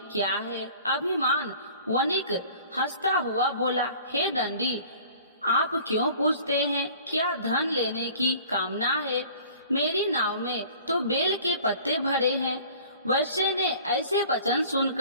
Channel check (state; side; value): inverted; both; correlation -0.47